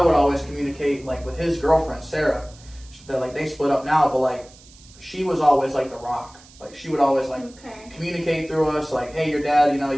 always communicate, like, with his girlfriend, Sarah, that, like, they split up now, but, like, she was always, like, the rock. Like, she would always, like, communicate through us, like, hey, your dad, you know,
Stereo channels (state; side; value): noise; right; hiss, 24 dB below the sound